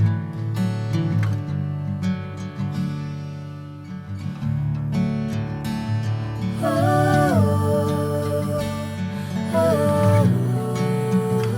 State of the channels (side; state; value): both; identical; correlation 1.00